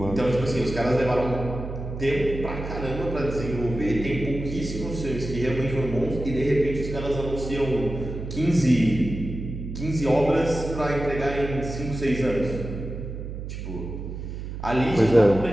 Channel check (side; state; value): right; noise; hum, 7 dB below the sound